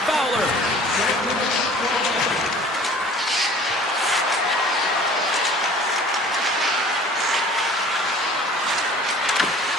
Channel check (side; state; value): both; normal; correlation 0.47